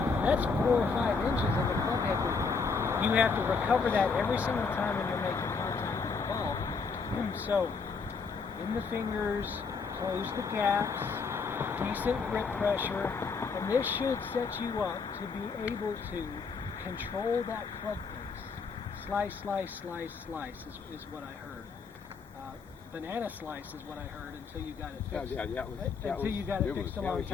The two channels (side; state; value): right; quieter; 5.0 dB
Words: that's 4 or 5 inches in the club head movement. You have to recover that every single time when you're making contact with the ball. So, in the fingers, close the gaps, decent grip pressure, and this should set you up to be able to control that club face. Slice is what I heard. Banana slice is what I heard until you got it fixed. You got it fixed a long